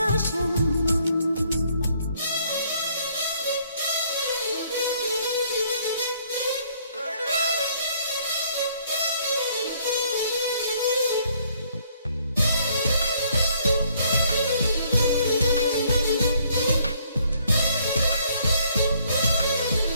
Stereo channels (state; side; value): inverted; both; correlation -0.65